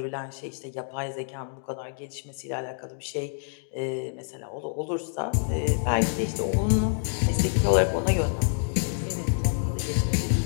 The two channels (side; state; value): right; silent; digital silence